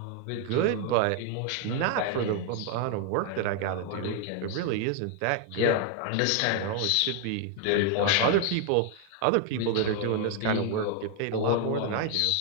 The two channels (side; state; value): both; different; correlation 0.00